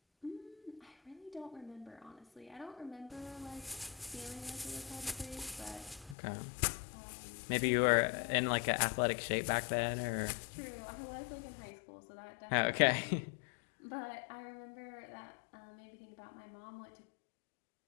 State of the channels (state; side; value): drops out; right; at 6.2 s